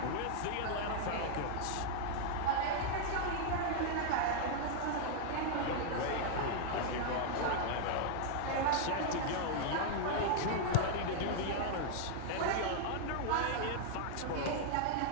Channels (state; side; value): different; both; correlation 0.00